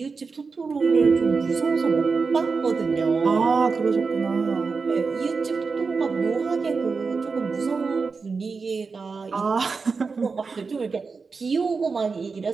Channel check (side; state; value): left; quieter; 4.7 dB